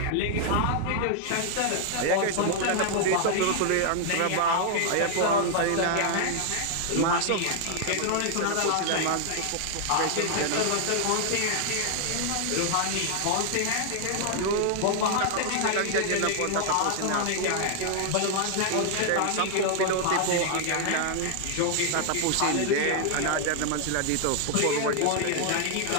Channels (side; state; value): both; different; correlation 0.00